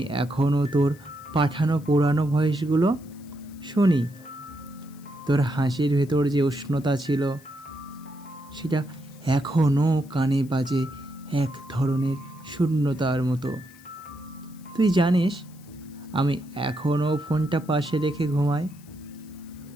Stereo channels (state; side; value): noise; left; hiss, 26 dB below the sound